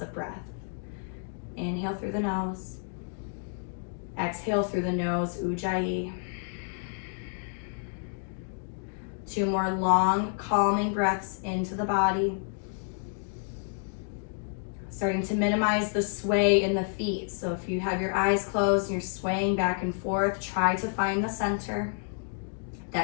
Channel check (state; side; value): silent; right; 58 dB below the other